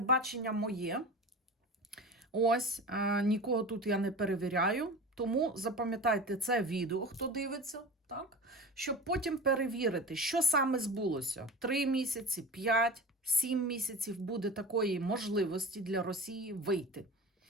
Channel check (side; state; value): both; normal; correlation 0.32